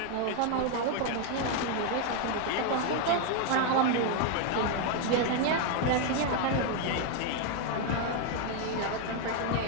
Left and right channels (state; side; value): different; both; correlation 0.01